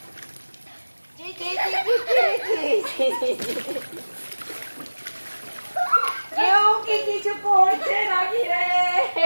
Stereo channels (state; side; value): inverted; both; correlation -1.00